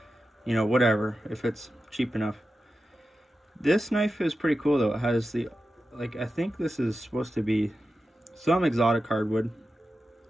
you know, whatever, if it's cheap enough. This knife is pretty cool though. It has the, like, I think this is supposed to be some exotic hardwood.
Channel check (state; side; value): normal; both; correlation 0.92